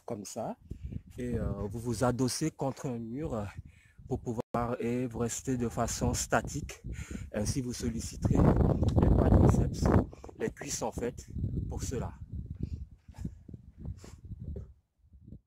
comme ça. Et vous vous adossez contre un mur pour pouvoir et vous restez de façon statique. Ainsi, vous solliciterez les quadriceps, les cuisses en fait, pour cela.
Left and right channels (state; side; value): identical; both; correlation 1.00